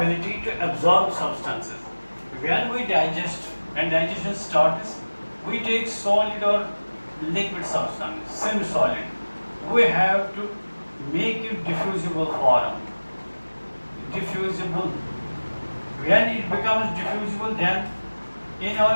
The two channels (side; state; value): both; inverted; correlation -1.00